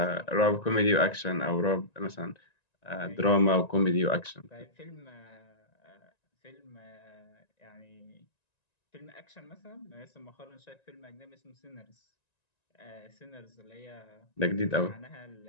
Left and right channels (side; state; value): right; late; 1.9 ms